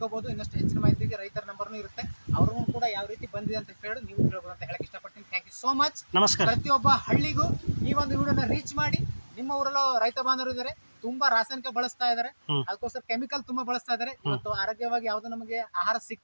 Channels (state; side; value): inverted; both; correlation -1.00